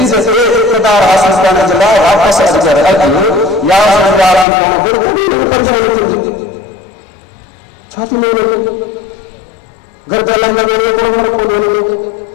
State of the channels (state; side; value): drops out; right; at 4.5 s